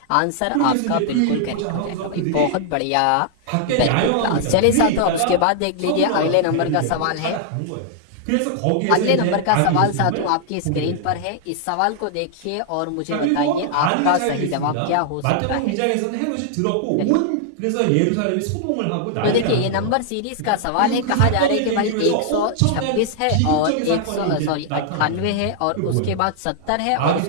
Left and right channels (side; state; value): both; different; correlation -0.01